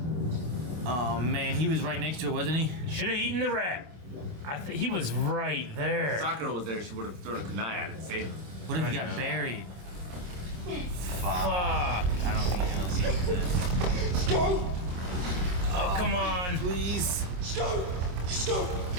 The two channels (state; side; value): late; left; 26 ms